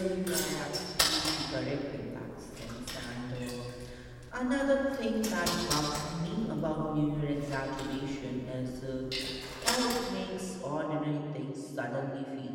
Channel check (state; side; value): identical; both; correlation 1.00